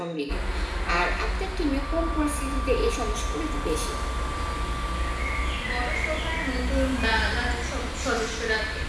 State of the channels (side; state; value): both; identical; correlation 1.00